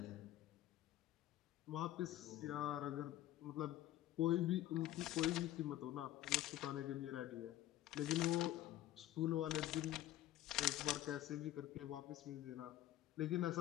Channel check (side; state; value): right; quieter; 13.9 dB